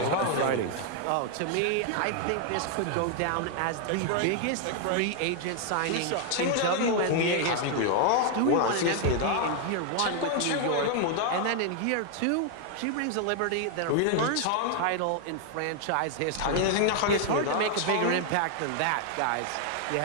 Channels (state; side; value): different; both; correlation 0.00